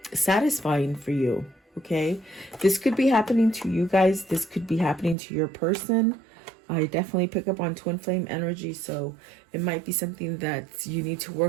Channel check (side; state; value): left; drops out; at 5.2 s